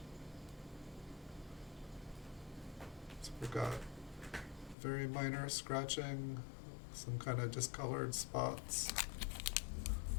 So we've got very minor scratching, some kind of discolored spots.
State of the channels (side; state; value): right; drops out; at 4.8 s